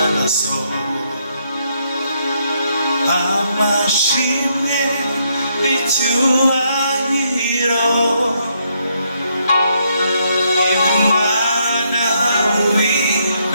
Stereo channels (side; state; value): both; inverted; correlation -0.75